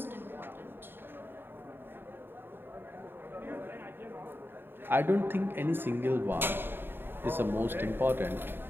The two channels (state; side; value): late; left; 0.10 ms